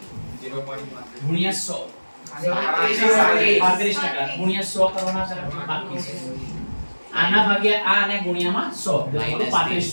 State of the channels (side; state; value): both; inverted; correlation -1.00